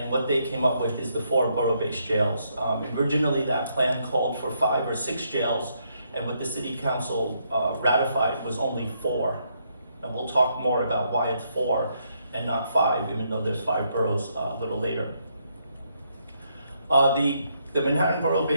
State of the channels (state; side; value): inverted; both; correlation -0.75